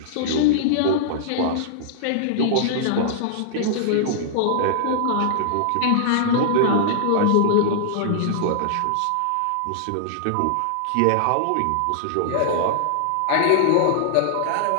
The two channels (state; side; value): different; both; correlation -0.01